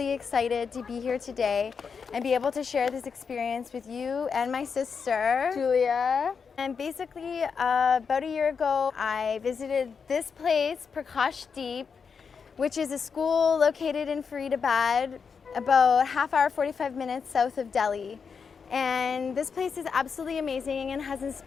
excited to be here today and be able to share this experience with you and my sister, Julia. And basically, about a year ago, I visited this place, Prakashdeep, which is a school located in Faridabad, about half hour, 45 minutes south of Delhi. And this place is absolutely amazing and has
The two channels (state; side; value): quieter; right; 5.9 dB